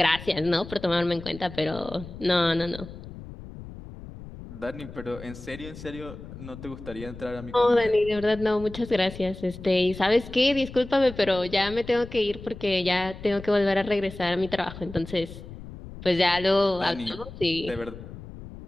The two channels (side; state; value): left; noise; rumble, 14 dB below the sound